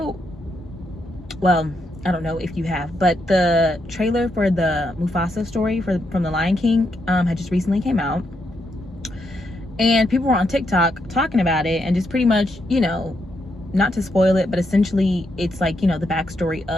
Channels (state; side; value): normal; both; correlation 0.80